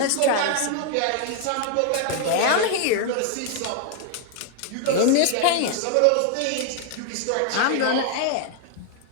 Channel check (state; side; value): different; both; correlation 0.00